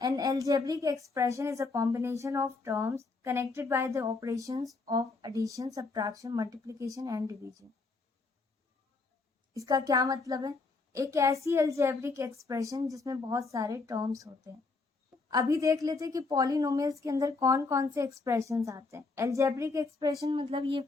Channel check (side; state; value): right; quieter; 3.9 dB